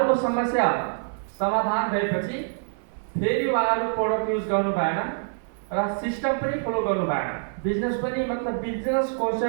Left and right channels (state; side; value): silent; left; 61 dB below the other